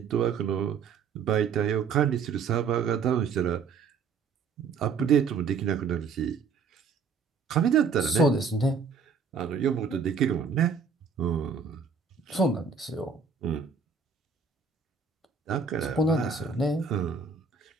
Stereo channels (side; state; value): left; quieter; 5.5 dB